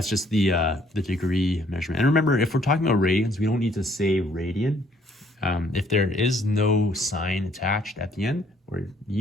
just the degree measurement. And remember, if we're talking about radians, we don't need to say radian. If there is no sign attached at the end or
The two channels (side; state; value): both; normal; correlation 0.64